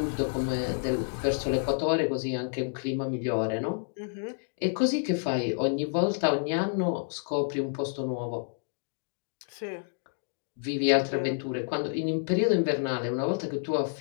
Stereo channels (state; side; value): silent; right; digital silence